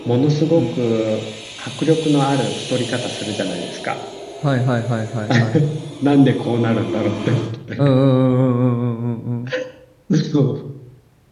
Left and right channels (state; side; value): identical; both; correlation 1.00